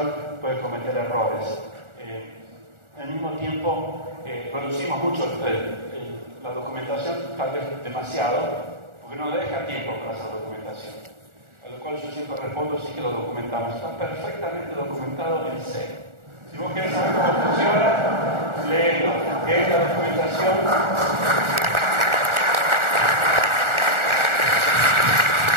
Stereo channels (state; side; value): late; left; 1.4 ms